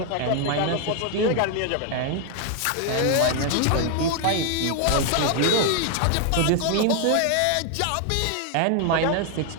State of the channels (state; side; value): different; both; correlation 0.01